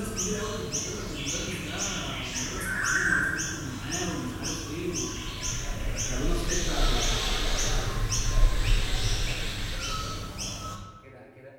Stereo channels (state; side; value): identical; both; correlation 1.00